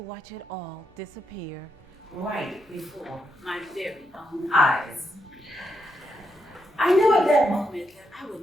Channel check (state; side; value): normal; both; correlation 0.80